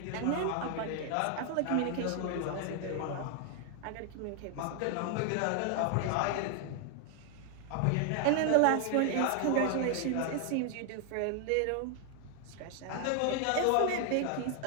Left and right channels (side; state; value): both; different; correlation 0.00